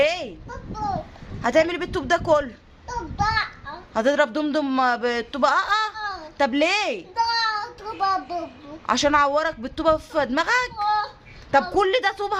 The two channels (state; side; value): identical; both; correlation 1.00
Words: هتعملي إيه بالطوب ده كله؟ هتضرب دمدم بالطوبة؟ طب ليه؟ عشان اعورك بالطوبة في دماغك؟ طب كل ده طوب